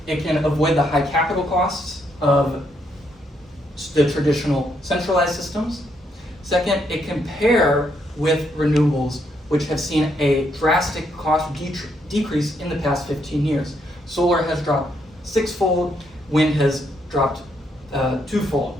it can avoid the high capital costs of the traditional centralized systems. Second, it can pair with renewables, which have seen a drastic cost decrease in the past 15 years. Solar has dropped 6-fold, wind has dropped 2-fold,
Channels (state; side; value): normal; both; correlation 0.75